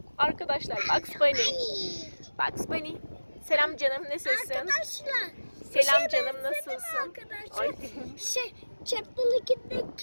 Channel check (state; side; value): inverted; both; correlation -1.00